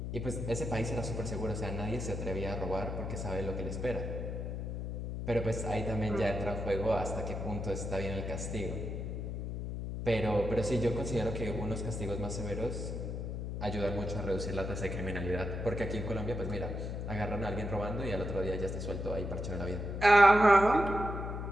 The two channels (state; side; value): noise; left; hum, 4 dB below the sound